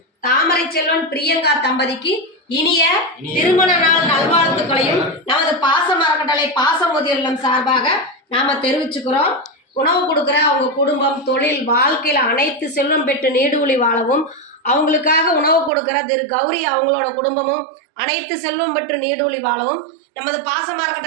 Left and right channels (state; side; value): drops out; left; at 15.7 s